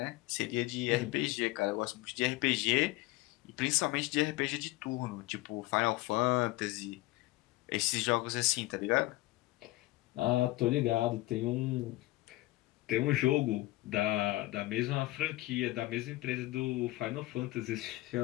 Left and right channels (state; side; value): quieter; right; 19.4 dB